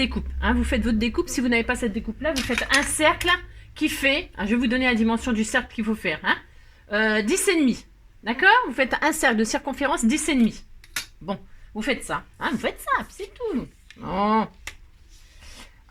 Hein. Vous faites votre découpe. Si vous n'avez pas cette découpe-là, vous faites un cercle qui fait... Hein, je vais vous donner la dimension du cercle qu'il faut faire. Hein, 10,5. D'accord? Vous faites un cercle de circonférence 10,5. Bon, vous faites ça. Hein, vous faites ça, c'est tout. Oh.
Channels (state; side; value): identical; both; correlation 1.00